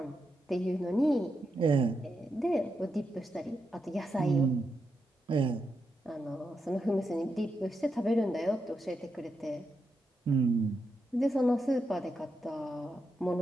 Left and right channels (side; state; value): both; normal; correlation 0.85